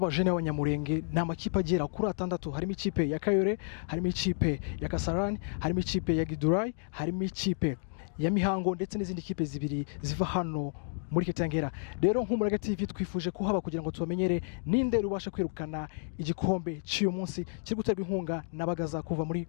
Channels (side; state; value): right; silent; digital silence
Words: b'Abanyamulenge n'amakipe agera kuri 6 harimo ikipe ya Kayore, harimo ikipe ya Kasarani, harimo ikipe ya Gidurai, harimo ikipe ya Mihango ndetse n'izindi kipe zibiri ziva hano muri Kitengera. Rero nk'Umurage TV twifuje kuhaba kugira ngo tubamenyere ninde rubasha kwirukana igikombe cy'uyu munsi kiri guterwa inkunga na Bagaza kuva muri